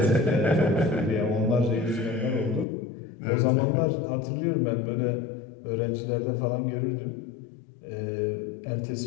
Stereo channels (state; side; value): drops out; right; at 2.7 s